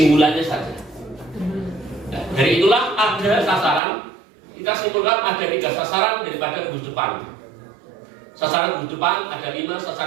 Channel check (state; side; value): drops out; left; at 3.8 s